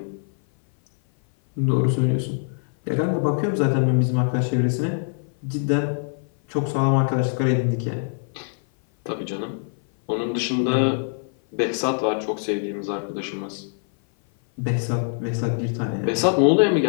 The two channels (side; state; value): right; silent; 57 dB below the other